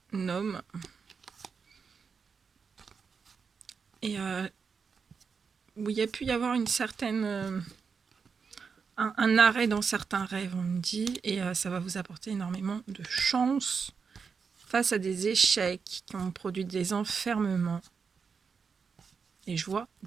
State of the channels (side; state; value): left; quieter; 5.7 dB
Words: homme, et où il y a pu y avoir une certaine un arrêt dans certains rêves, on me dit, et ça va vous apporter énormément de chance face à des échecs qui ont produit des enfermements. Et je vois